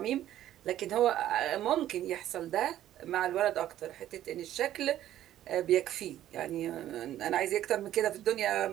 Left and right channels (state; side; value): quieter; left; 12.5 dB